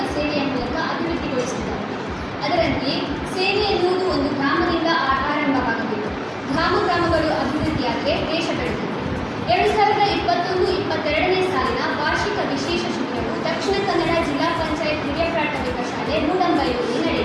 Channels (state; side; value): identical; both; correlation 1.00